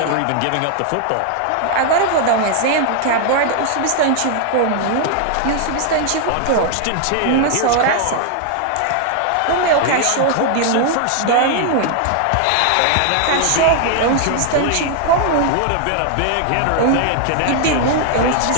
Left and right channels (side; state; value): both; different; correlation 0.00